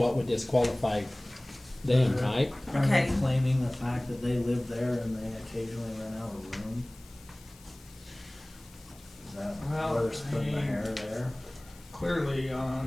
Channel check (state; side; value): noise; left; hiss, 24 dB below the sound